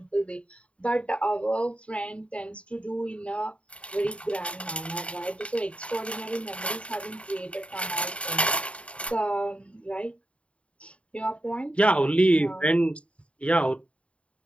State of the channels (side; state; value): right; late; 0.061 ms